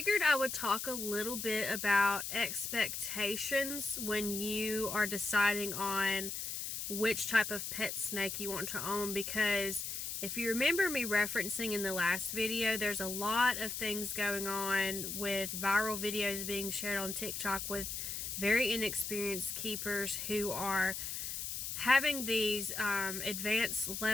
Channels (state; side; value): noise; left; hiss, 4 dB below the sound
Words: I would talk a little bit about expectations when you are deciding on which type of pet snake you want to own, because if you remember me referencing in the last video, there's a lot of things going on with viral videos being shared on TikTok with very inexperienced keepers who are having these advanced